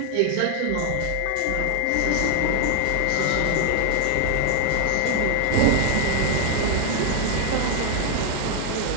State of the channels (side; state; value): both; different; correlation 0.00